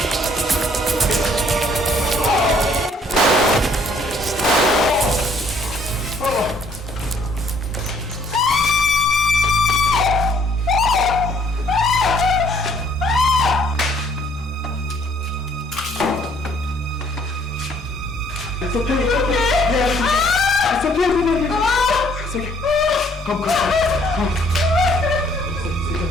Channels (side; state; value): both; normal; correlation 0.63